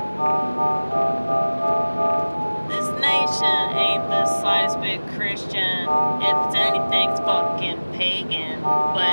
This nation ain't the slightest bit Christian. If it's anything, it's fucking pagan.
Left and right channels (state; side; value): inverted; both; correlation -1.00